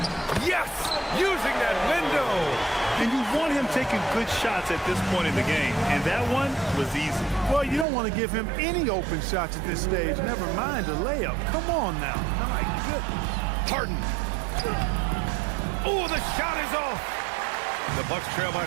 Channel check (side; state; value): left; drops out; at 7.9 s